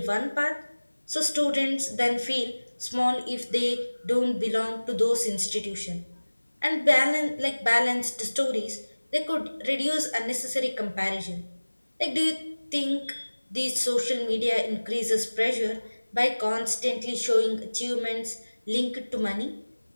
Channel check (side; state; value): both; inverted; correlation -1.00